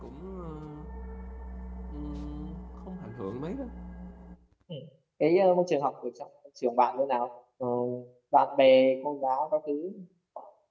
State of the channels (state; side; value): identical; both; correlation 1.00